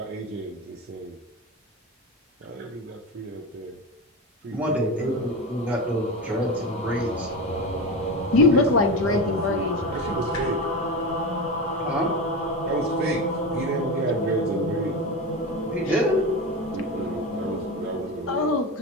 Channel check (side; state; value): both; normal; correlation 0.21